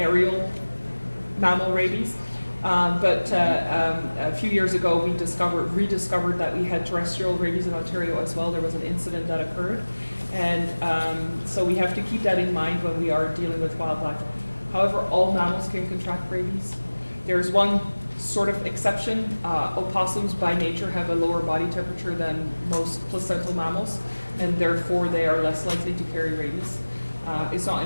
mammal rabies. But a few years ago, we rediscovered that we had terrestrial rabies in Ontario as well. There was an incident that occurred. And so we have to keep that in mind when we are dealing with wildlife. However, all mammals can contract rabies. There's one sort of exception. Opossums by nature have a lower body temperature than most placental mammals, and therefore they are less likely to carry rabies. It's not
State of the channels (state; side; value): inverted; both; correlation -1.00